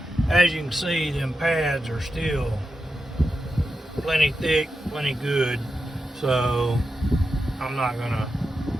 As you can see, them pads are still plenty thick, plenty good. So I'm not gonna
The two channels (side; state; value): both; normal; correlation 0.89